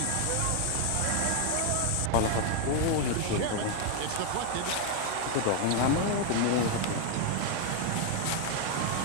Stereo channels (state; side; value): different; both; correlation 0.01